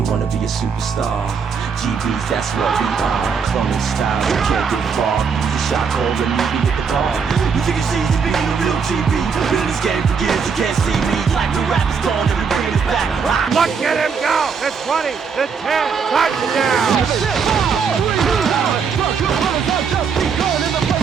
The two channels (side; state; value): left; quieter; 6.0 dB